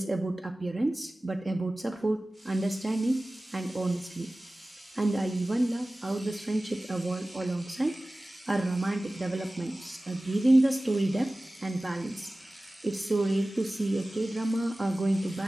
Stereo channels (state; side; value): normal; both; correlation 0.97